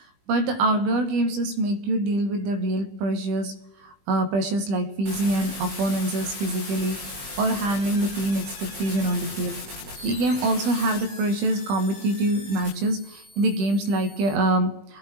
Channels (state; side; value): late; left; 20 ms